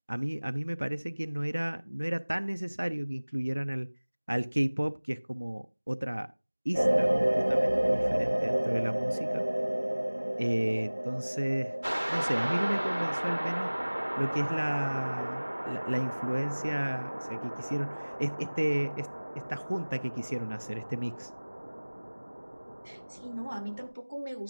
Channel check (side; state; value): both; inverted; correlation -1.00